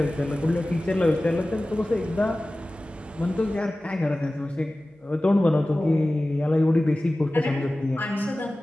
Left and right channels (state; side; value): normal; both; correlation 0.97